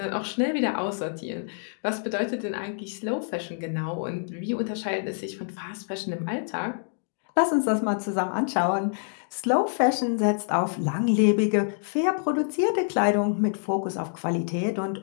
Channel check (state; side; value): silent; right; digital silence